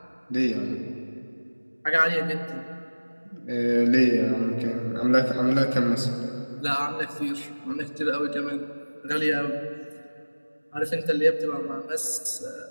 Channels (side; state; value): both; inverted; correlation -1.00